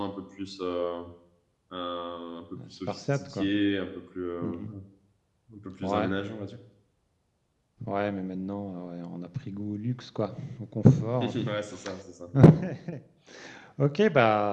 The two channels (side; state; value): both; identical; correlation 1.00